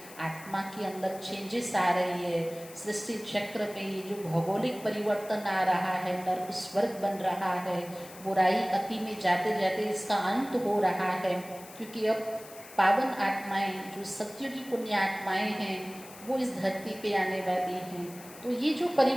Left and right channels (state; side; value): noise; left; hiss, 18 dB below the sound